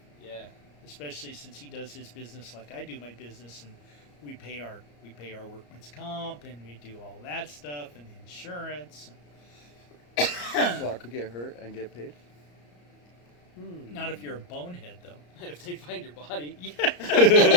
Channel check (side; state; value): right; late; 34 ms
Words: Yeah. Especially since he does his business like I do my business, and we pay our workman's comp, and we do all that stuff, and the insurance. So I could get hurt and get paid? Not if you're a bonehead, though. If they find your body.